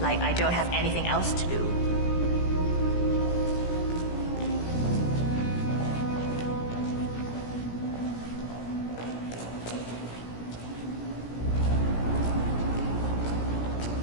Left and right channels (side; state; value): right; late; 17 ms